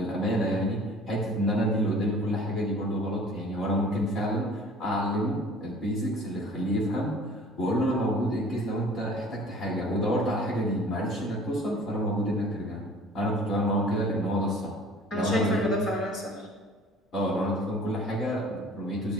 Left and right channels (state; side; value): normal; both; correlation 0.48